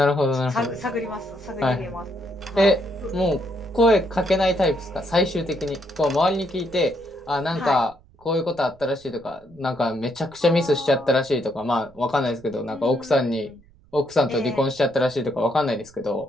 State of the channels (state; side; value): noise; right; rumble, 27 dB below the sound